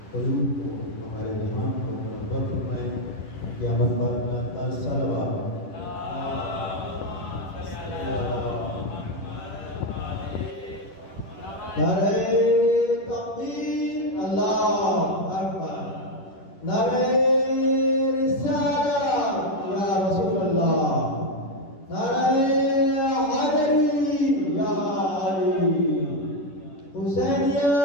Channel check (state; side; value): late; right; 10 ms